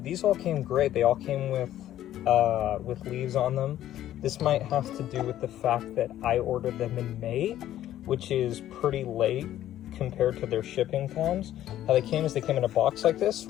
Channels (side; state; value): right; quieter; 12.6 dB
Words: these all came great. They all came with leaves on them. This might have to do with the fact that I ordered them in May, which is pretty late compared to their shipping times. How they came is they came in a box like this,